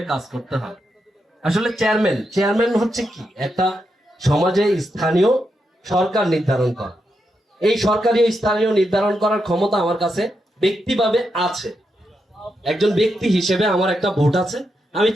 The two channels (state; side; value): normal; both; correlation 0.84